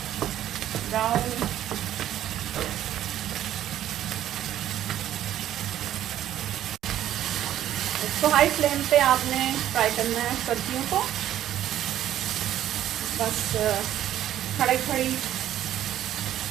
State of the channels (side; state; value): left; quieter; 12.0 dB